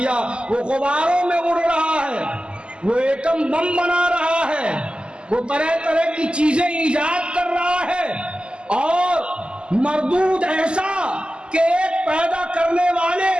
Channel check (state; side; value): late; left; 0.050 ms